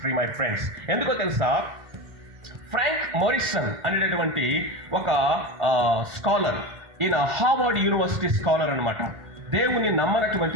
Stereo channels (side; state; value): left; late; 1.4 ms